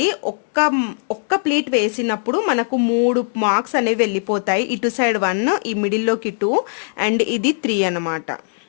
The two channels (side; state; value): right; silent; digital silence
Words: ఒక్క ప్లీట్ వేసినప్పుడు మనకు 3 మార్క్స్ అనేవి వెళ్ళిపోతాయి. ఇటు సైడ్ 1, ఈ మిడిల్లోకి 2 అండ్ ఇది 3 అనమాట.